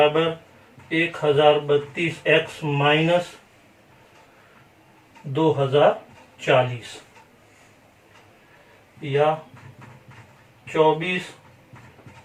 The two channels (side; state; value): both; identical; correlation 1.00